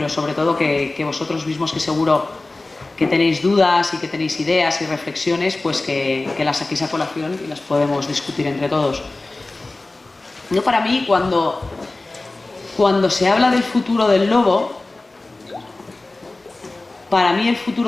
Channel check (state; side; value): quieter; right; 3.1 dB